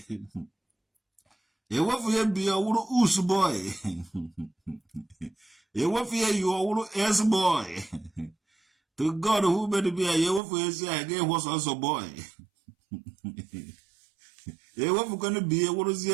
Ewefu ye be a wuru us boy. Ewefu ye you a wuru S boy. To God who made be a yewefu ye say I was also boy. Ewefu gonna be a wuru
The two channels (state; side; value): drops out; left; at 10.4 s